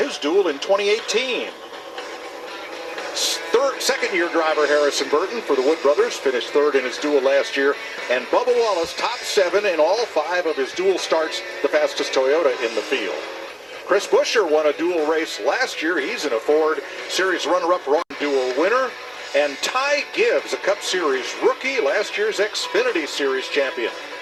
Dule in 2018. Second-year driver Harrison Burton for the Wood brothers finished third in his Dule last year, and Bubba Wallace top 7 in all 5 of his Dule starts, the fastest Toyota in the field. Chris Buescher won a Dule race last year. He's in a Ford Series runner-up Dule winner. And Ty Gibbs, a Cup Series rookie, last year's Xfinity Series champion,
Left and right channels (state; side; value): identical; both; correlation 1.00